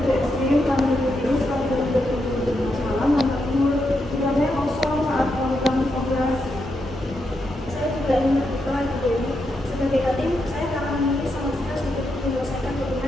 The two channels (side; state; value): both; normal; correlation 0.83